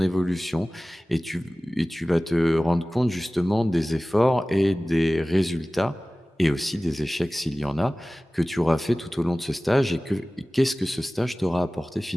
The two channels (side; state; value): both; normal; correlation 0.97